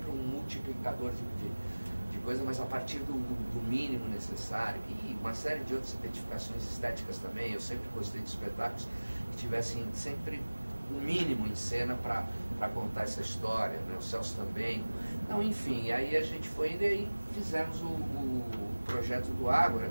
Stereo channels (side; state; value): both; inverted; correlation -1.00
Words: um multiplicador de coisa, mas a partir do mínimo necessário, e uma série de outras identificações estéticas também. Eu sempre gostei de espetáculos que tivessem sempre o mínimo em cena para contar essa história, né? O Celso também. Então, enfim, aí a gente foi indo e aí fizemos o projeto do Ágora